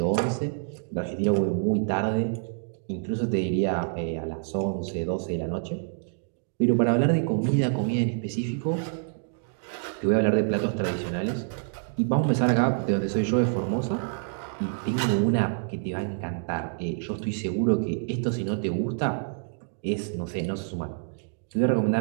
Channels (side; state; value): left; silent; digital silence